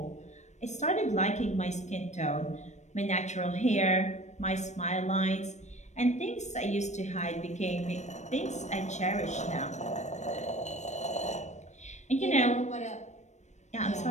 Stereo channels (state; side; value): late; right; 0.34 ms